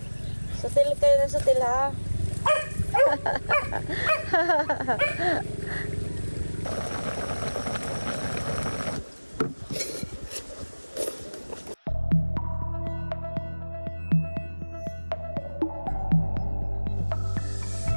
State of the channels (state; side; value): inverted; both; correlation -1.00